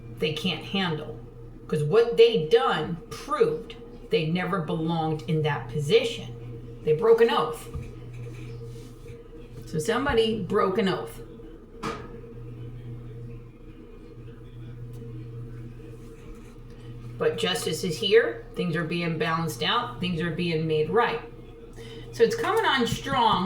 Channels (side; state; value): both; identical; correlation 1.00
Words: they can't handle. Because what they done proved they never belonged in that position. They broke an oath. So somebody broke an oath. But justice is here. Things are being balanced out. Things are being made right. So it's coming on